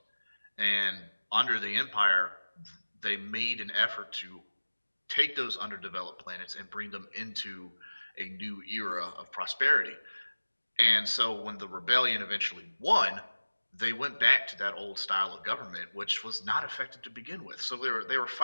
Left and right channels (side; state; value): both; inverted; correlation -1.00